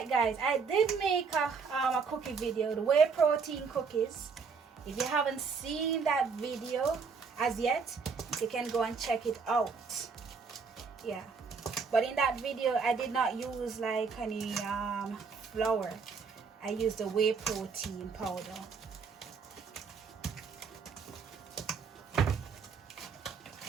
guys. I did make a cookie video, the whey protein cookies. If you haven't seen that video as yet, you can go and check it out. Yeah. But in that video, I did not use like any flour. I used the whey protein powder.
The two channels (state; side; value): quieter; left; 5.3 dB